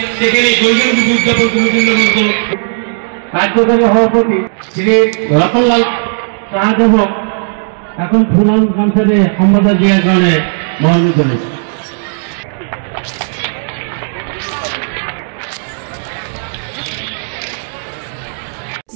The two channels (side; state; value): left; silent; digital silence